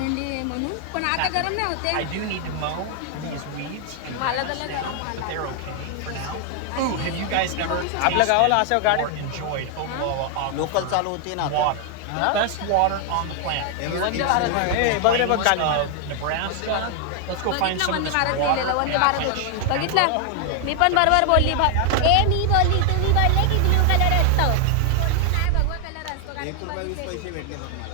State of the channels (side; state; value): both; different; correlation 0.00